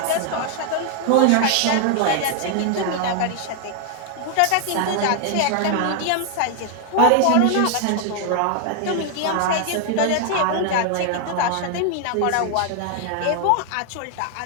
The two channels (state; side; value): different; both; correlation 0.00